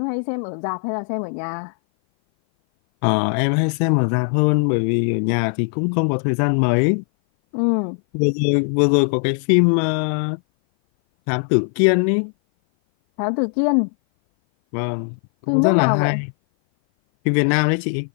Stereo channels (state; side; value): silent; right; 57 dB below the other